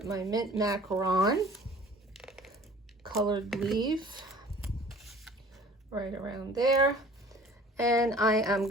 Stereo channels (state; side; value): normal; both; correlation 0.49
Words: my mint macaron colored leaf right around there. And I am